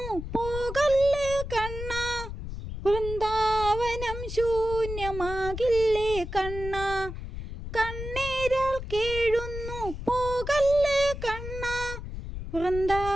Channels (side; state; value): left; noise; rumble, 8 dB below the sound